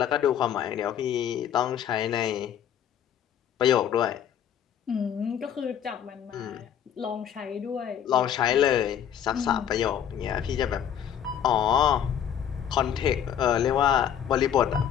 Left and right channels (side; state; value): right; quieter; 9.4 dB